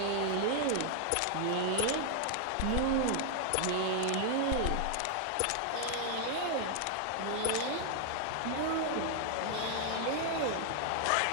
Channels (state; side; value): different; both; correlation 0.00